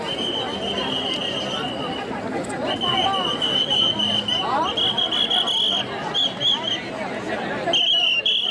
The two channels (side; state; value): both; identical; correlation 1.00